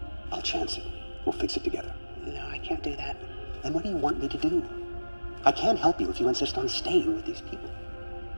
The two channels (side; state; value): both; inverted; correlation -1.00